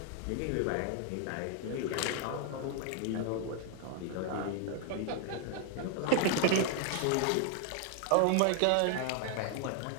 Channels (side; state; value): both; different; correlation 0.00